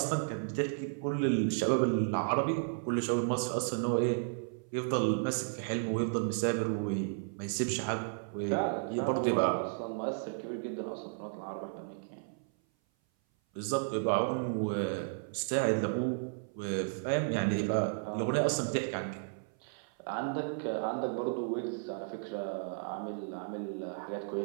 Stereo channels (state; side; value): silent; left; 55 dB below the other